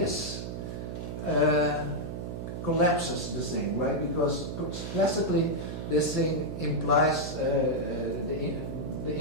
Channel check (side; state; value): right; noise; hum, 6 dB below the sound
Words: collapses the thing, right? Because classically this thing implies the